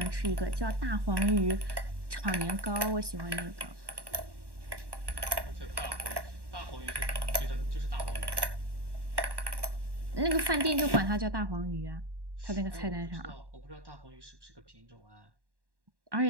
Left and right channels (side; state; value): left; late; 1.1 ms